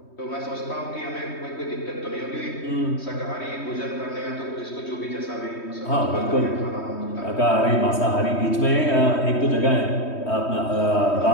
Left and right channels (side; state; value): right; late; 3.2 ms